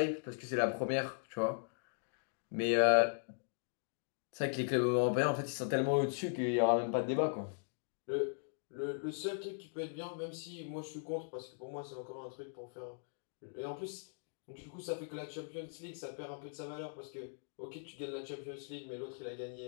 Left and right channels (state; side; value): silent; right; digital silence